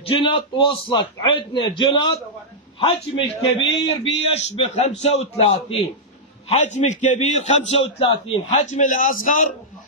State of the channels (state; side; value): normal; both; correlation -0.09